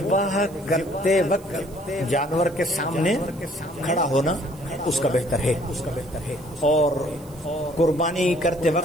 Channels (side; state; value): right; noise; hiss, 24 dB below the sound